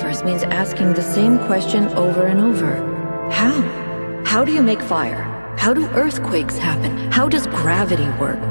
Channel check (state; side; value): inverted; both; correlation -1.00